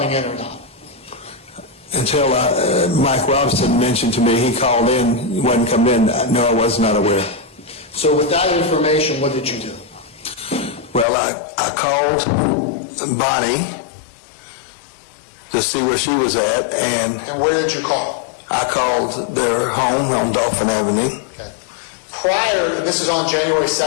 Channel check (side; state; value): right; drops out; at 11.1 s